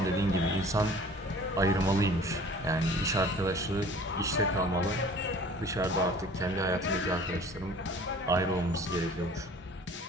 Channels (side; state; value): both; normal; correlation 0.47